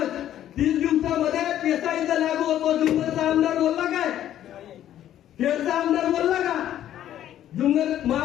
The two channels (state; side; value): quieter; right; 11.6 dB